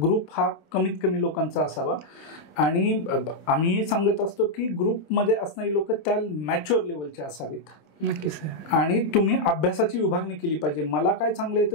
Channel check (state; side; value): late; right; 27 ms